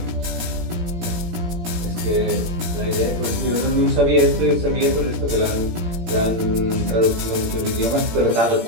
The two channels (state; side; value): late; left; 17 ms